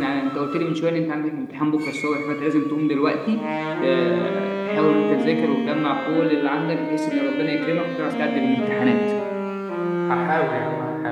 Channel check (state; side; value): identical; both; correlation 1.00